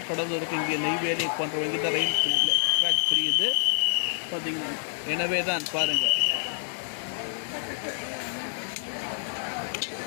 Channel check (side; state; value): right; silent; digital silence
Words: கடலூருக்கு இங்கே நெய்வேலி போன்ற வங்கி தான் ரயில் ட்ராக் பிரியுது பார்த்தீங்கன்னா. எனவே தான் பாருங்கள்.